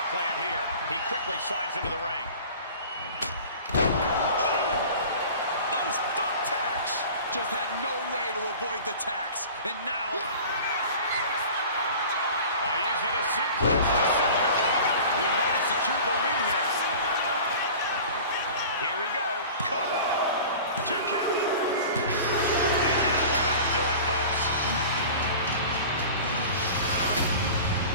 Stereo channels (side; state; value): both; inverted; correlation -0.40